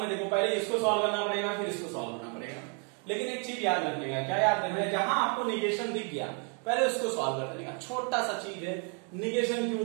है, देखो पहले इसको सॉल्व करना पड़ेगा, फिर इसको सॉल्व करना पड़ेगा। लेकिन एक चीज याद रखने का, क्या याद रखना है, जहां आपको निगेशन दिख गया पहले उसको सॉल्व कर देने का। छोटा सा चीज है, निगेशन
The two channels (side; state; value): left; quieter; 38.3 dB